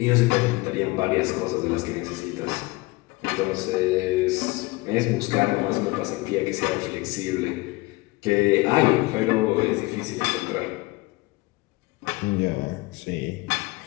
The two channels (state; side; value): quieter; right; 22.6 dB